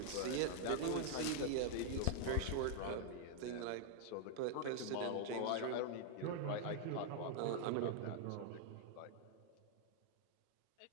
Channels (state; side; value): different; both; correlation -0.01